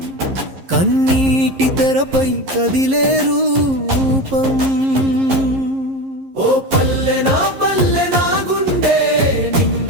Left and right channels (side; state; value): left; late; 11 ms